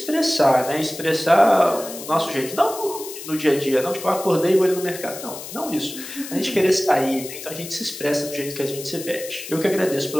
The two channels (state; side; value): noise; left; hiss, 11 dB below the sound